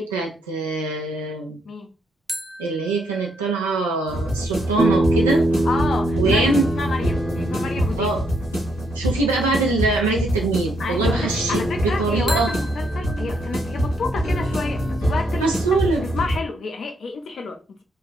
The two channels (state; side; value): normal; both; correlation 0.74